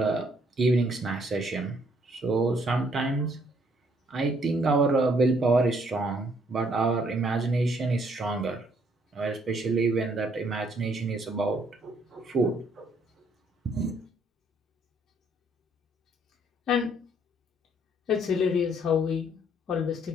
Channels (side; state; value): both; normal; correlation 0.67